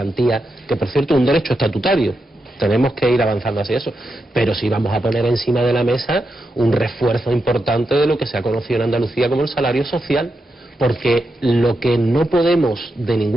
que por cierto es un derecho estatutario. Tenemos que ir avanzando hacia eso, pero sí vamos a poner encima de la mesa un refuerzo importante de lo que se ha conocido en Andalucía como el salario social, porque lo que no podemos de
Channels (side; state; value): both; normal; correlation 0.86